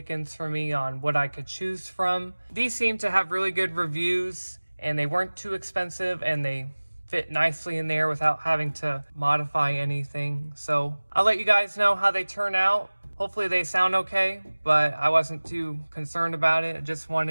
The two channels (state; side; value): inverted; both; correlation -1.00